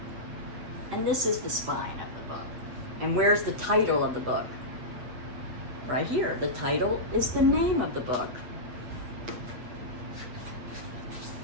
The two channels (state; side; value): late; left; 8.1 ms